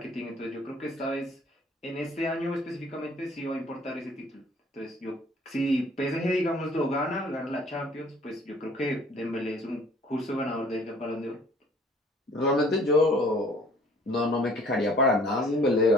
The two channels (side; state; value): both; normal; correlation 0.55